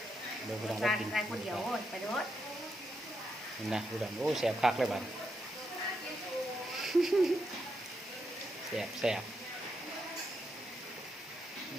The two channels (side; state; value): both; normal; correlation 0.82